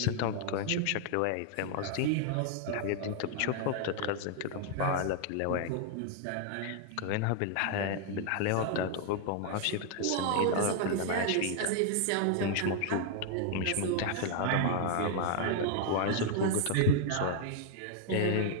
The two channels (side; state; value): both; different; correlation 0.00